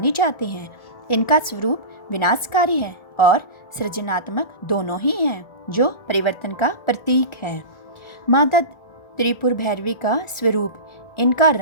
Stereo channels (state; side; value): late; right; 1.4 ms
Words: जाती हैं। इनका स्वरूप विनाशकारी है और सृजनात्मक दोनों ही हैं, जो परिवर्तन का प्रतीक है। माता त्रिपुर भैरवी का स्वरूप, इनका